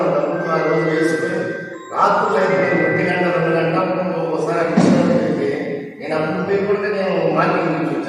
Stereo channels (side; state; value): both; identical; correlation 1.00